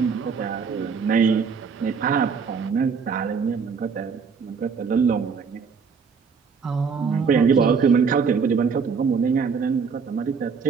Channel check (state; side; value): quieter; left; 5.7 dB